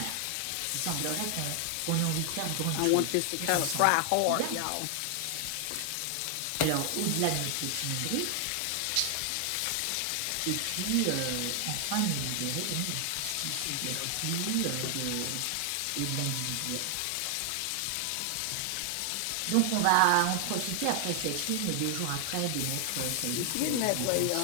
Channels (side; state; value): both; different; correlation 0.00